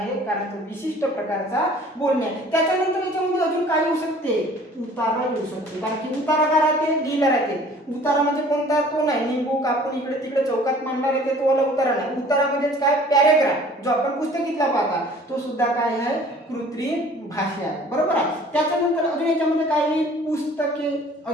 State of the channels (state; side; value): normal; both; correlation 0.51